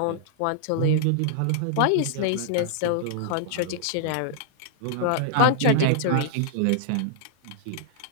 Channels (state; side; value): different; both; correlation -0.01